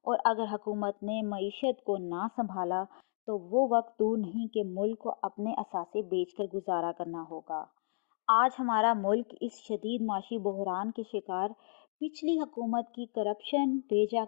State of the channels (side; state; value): right; silent; digital silence